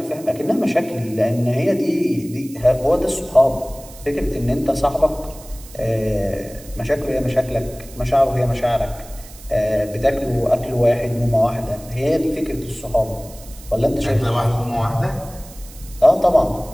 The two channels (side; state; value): right; noise; hiss, 19 dB below the sound